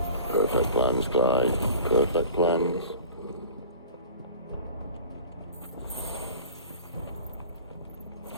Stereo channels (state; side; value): inverted; both; correlation -0.41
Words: Perfect plans, Clyde. Perfect plans.